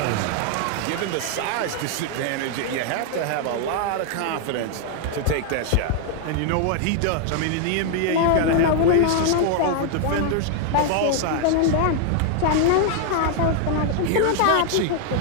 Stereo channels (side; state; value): both; different; correlation 0.00